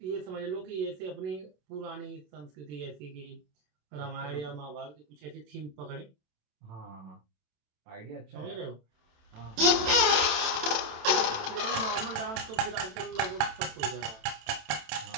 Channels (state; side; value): late; left; 27 ms